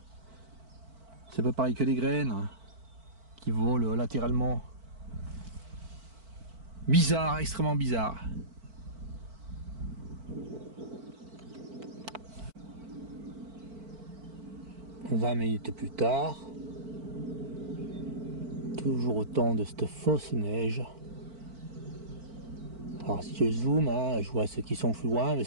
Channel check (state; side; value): late; left; 4.5 ms